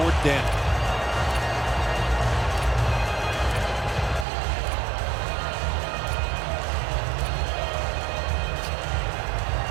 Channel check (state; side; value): drops out; left; at 4.2 s